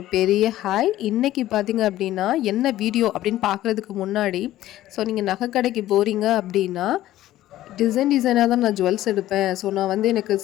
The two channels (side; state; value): right; quieter; 14.3 dB